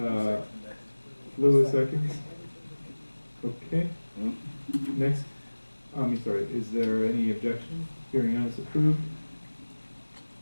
Lewis seconds? Okay. Next, sorry, is there any objection? Hearing none, it's approved.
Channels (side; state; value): both; inverted; correlation -1.00